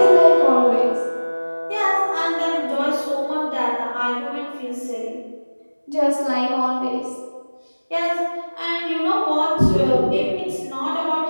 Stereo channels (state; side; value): inverted; both; correlation -1.00